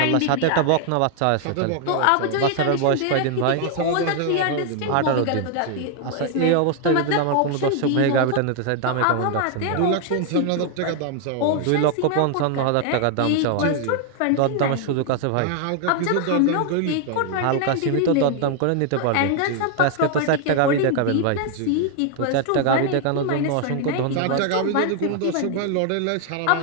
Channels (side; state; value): both; different; correlation 0.00